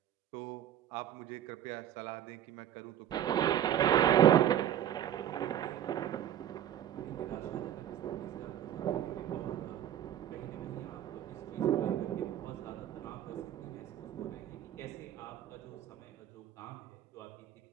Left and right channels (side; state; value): left; quieter; 10.9 dB